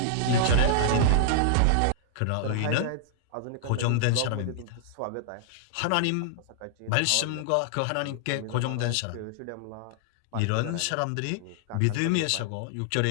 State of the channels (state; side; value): different; both; correlation -0.01